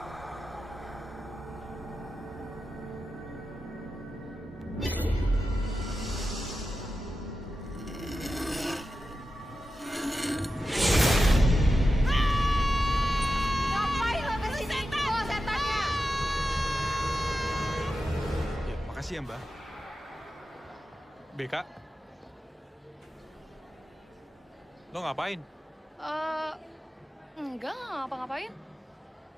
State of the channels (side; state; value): both; normal; correlation 0.91